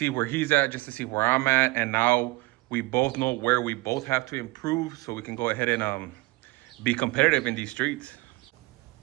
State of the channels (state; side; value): quieter; left; 22.5 dB